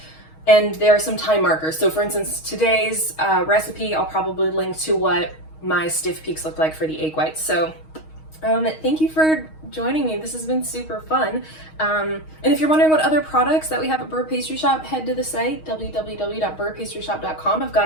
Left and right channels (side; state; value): right; late; 6.4 ms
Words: And there are some time markers. So for instance, today's recipe, I'll probably link to what my stiff peaks look like for the egg whites. So thank you for joining me. This has been super fun. And if you're wondering what other products that we have at Beurre Pastry Shop, head to the site, www.beurrepastryshop.com. I've got